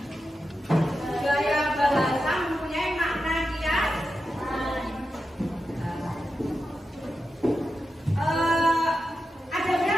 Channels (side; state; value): both; normal; correlation 0.89